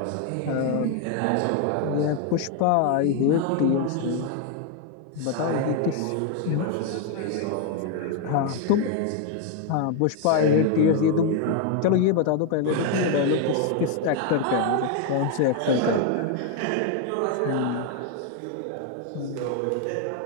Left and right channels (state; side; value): different; both; correlation 0.01